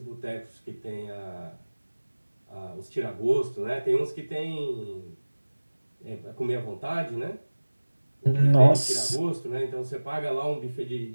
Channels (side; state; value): both; inverted; correlation -1.00